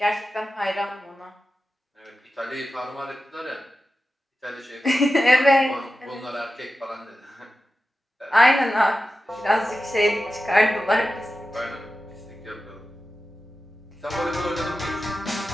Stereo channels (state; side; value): normal; both; correlation 0.93